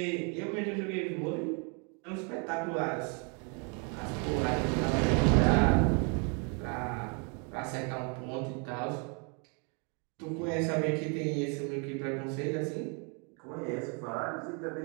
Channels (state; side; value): quieter; left; 36.2 dB